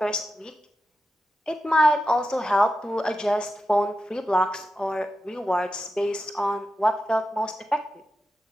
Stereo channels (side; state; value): both; normal; correlation 0.90